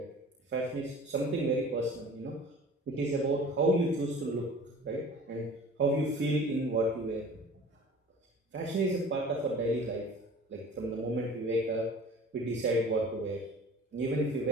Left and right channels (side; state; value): both; normal; correlation 0.44